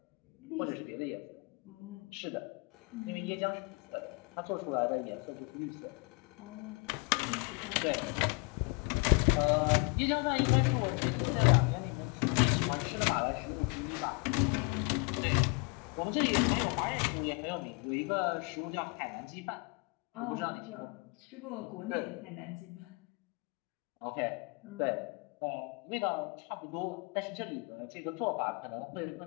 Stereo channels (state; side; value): quieter; right; 31.4 dB